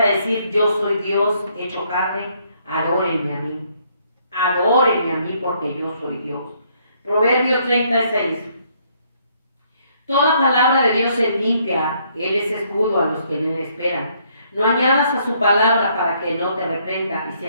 decir, yo soy Dios hecho carne, adórenme a mí. Adórenme a mí porque yo soy Dios. Proverbios 36. Toda palabra de Dios es limpia, Él es escudo a los que le esperan. No añadas a su palabra para que no te reprenda y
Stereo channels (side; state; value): both; inverted; correlation -0.69